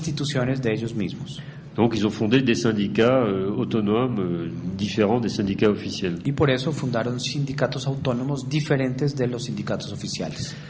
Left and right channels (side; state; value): both; identical; correlation 1.00